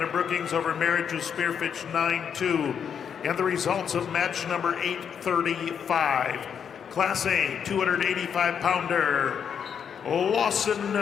of Brookings over Marriage of Spearfish, 9-2. And the results of match number 835. Class A, 285-pounder,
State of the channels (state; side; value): quieter; right; 7.5 dB